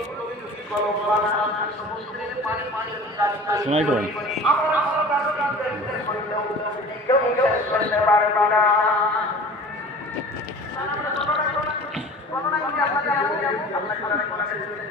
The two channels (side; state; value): both; normal; correlation 0.41